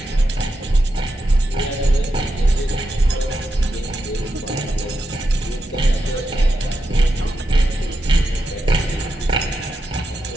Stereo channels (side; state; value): both; normal; correlation 0.86